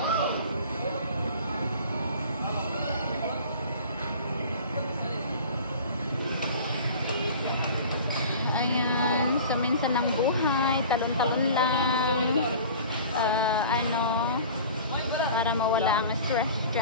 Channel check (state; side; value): inverted; both; correlation -0.41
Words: Ayan, so minsan ng buhay, talon-talon lang. Ano, para mawala ang stress